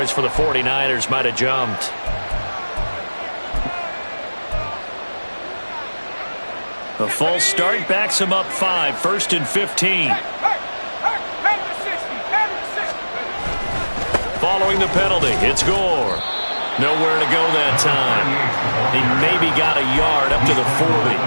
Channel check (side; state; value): both; inverted; correlation -1.00